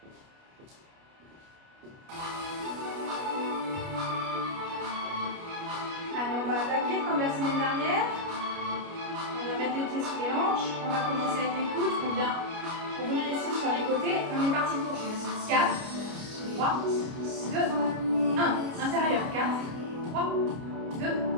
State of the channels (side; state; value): left; late; 29 ms